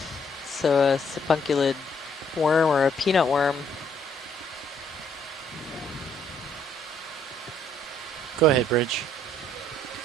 so a sipunculid worm or a peanut worm. Go ahead, Bridge.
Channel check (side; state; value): both; normal; correlation 0.66